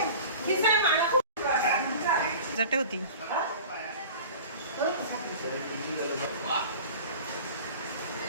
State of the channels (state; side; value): inverted; both; correlation -0.39